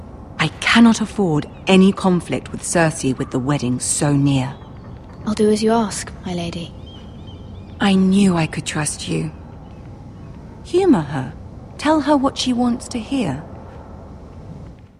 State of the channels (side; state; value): both; identical; correlation 1.00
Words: I cannot afford any conflict with Cersei with the wedding so near. I'll do as you ask, my lady. I knew I could trust you. Humor her. Tell her what she wants to hear.